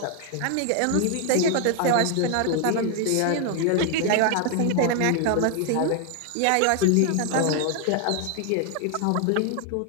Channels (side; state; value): both; different; correlation 0.00